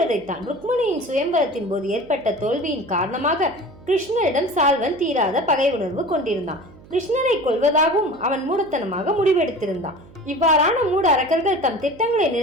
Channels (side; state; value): right; noise; hum, 22 dB below the sound